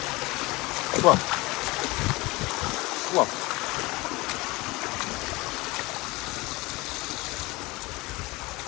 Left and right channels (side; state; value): right; quieter; 22.6 dB